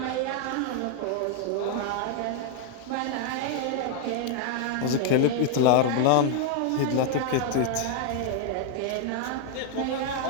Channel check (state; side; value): different; both; correlation 0.00